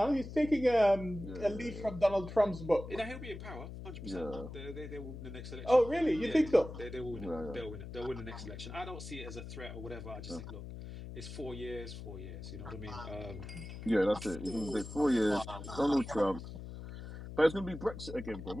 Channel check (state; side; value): noise; left; hum, 10 dB below the sound